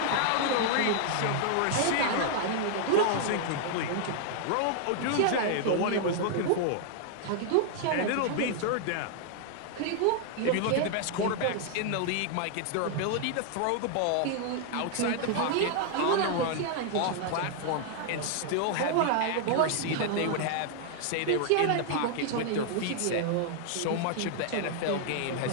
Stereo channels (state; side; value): different; both; correlation 0.00